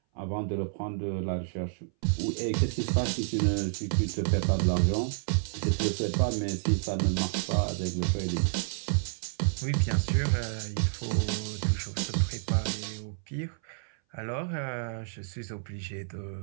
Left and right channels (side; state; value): left; silent; 58 dB below the other